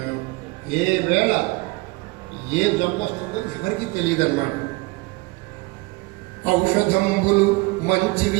ఏ వేళ ఏ జబ్బు వస్తుందో ఎవరికి తెలియదన్నమాట. ఔషధంబులు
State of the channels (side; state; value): left; quieter; 24.1 dB